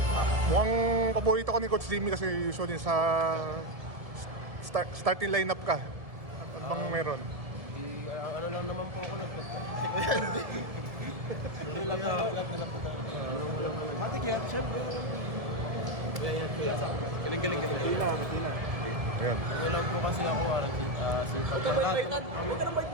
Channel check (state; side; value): late; left; 1.7 ms